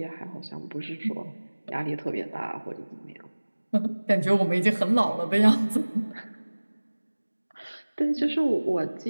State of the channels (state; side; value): inverted; both; correlation -1.00